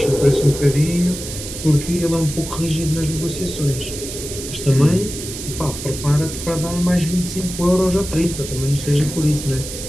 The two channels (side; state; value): right; noise; hiss, 9 dB below the sound